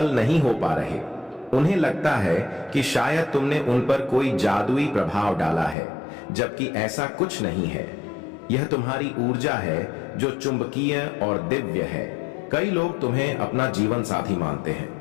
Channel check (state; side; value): drops out; right; at 5.8 s